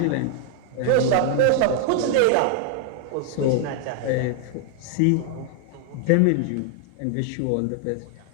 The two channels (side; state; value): both; different; correlation 0.00